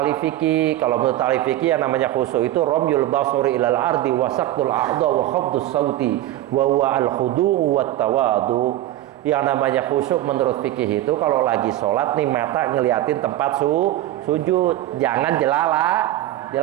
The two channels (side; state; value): left; quieter; 14.5 dB